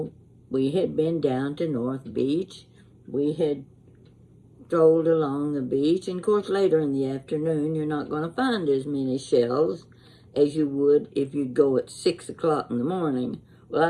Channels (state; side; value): identical; both; correlation 1.00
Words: we had been down to North Beach. We had strolled along the beach. And of course, later in the afternoon, you're not going to find as many shells as you would if you go at 6 o'clock in the morning. Well,